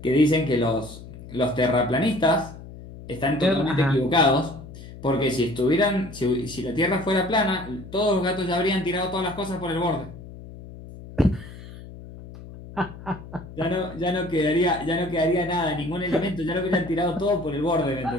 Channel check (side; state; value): left; noise; hum, 15 dB below the sound